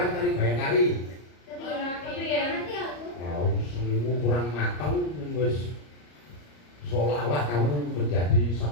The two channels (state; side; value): late; right; 34 ms